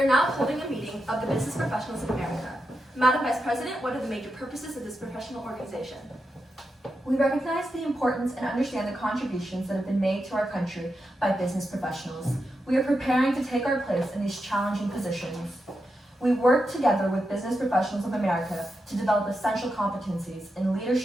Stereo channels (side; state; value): both; normal; correlation 0.87